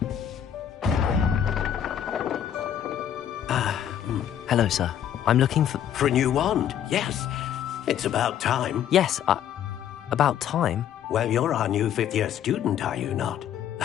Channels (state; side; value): quieter; right; 9.8 dB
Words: Hello, sir. I'm looking for... For a new wand, yes. It's about time. Yes, about time? Well, you're our new fifth-year student, are you not?